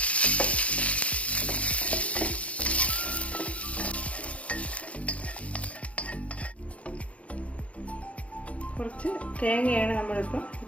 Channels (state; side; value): late; right; 0.064 ms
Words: കുറച്ച് തേങ്ങയാണ് നമ്മളിപ്പോൾ